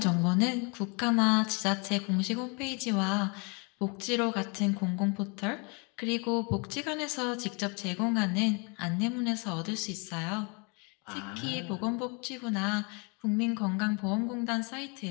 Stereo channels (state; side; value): quieter; right; 32.6 dB